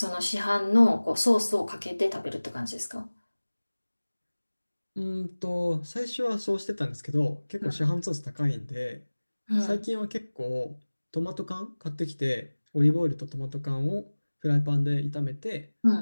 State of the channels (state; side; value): inverted; both; correlation -1.00